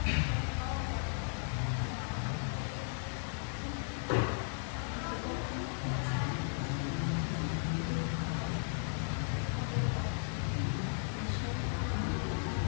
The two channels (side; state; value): right; silent; 54 dB below the other